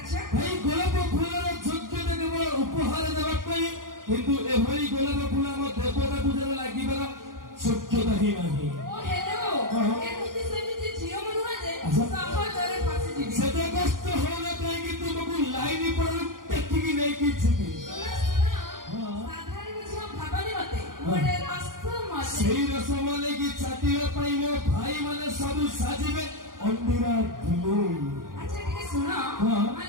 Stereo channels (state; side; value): late; left; 0.90 ms